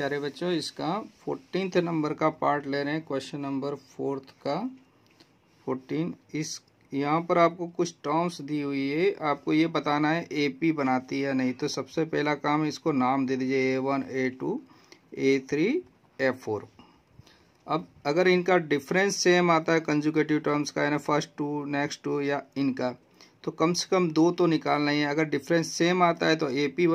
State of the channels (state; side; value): identical; both; correlation 1.00